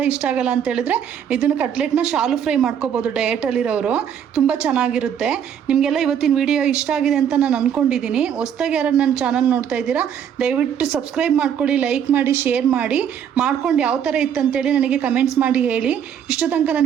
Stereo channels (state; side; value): quieter; left; 8.6 dB